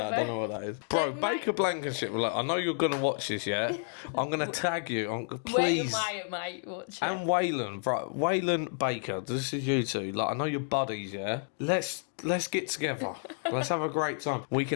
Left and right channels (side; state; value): right; silent; digital silence